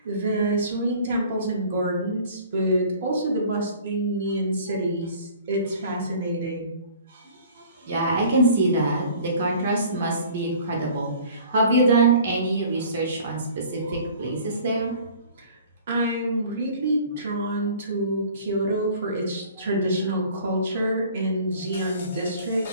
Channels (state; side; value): inverted; both; correlation -0.48